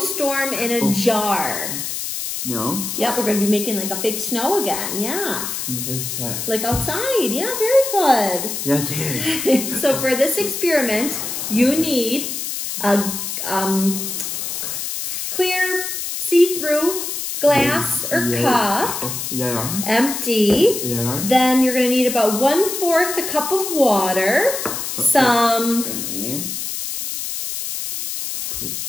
in a Jar. No. Yep, we're going to be making like a fake snow again. Yeah. Like outside. Yeah, very good. Yeah, So for this experiment, you need a clear, see-through glass or cup, empty. Then you're going to need about 1/4 a cup of water, some,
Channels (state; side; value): noise; left; hiss, 4 dB below the sound